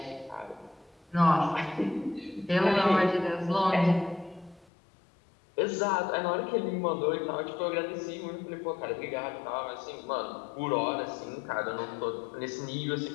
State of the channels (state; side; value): drops out; right; at 4.7 s